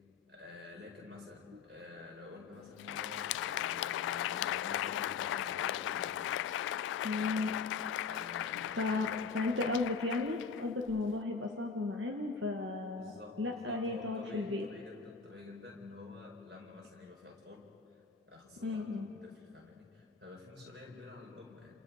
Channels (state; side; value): quieter; right; 5.2 dB